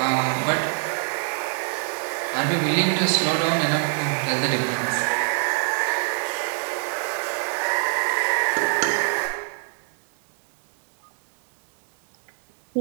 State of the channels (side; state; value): left; silent; 62 dB below the other